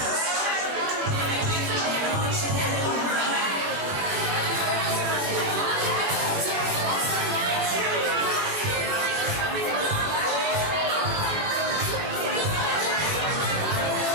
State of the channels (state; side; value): late; left; 21 ms